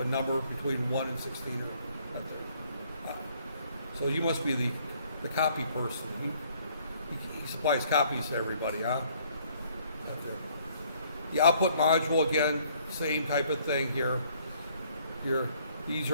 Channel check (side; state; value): both; inverted; correlation -0.63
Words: number between 1 and 16 right there. So you must be the copy person. He supplies copies to everybody, huh? The output module, again, same type of thing here. These